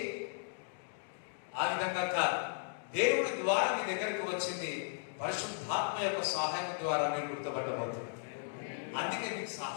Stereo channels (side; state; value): right; silent; digital silence